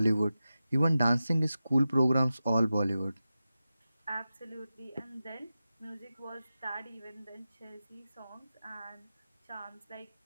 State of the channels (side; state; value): both; inverted; correlation -0.93